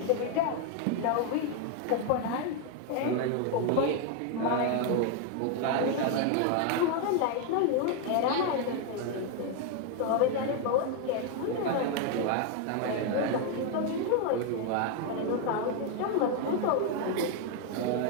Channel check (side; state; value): both; different; correlation 0.00